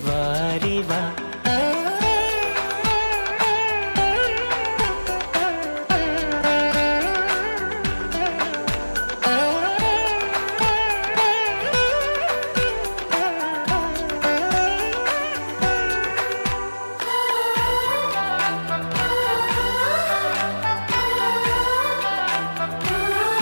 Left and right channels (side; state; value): both; inverted; correlation -1.00